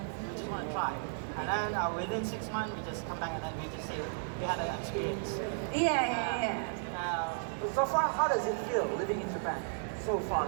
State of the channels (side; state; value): left; silent; digital silence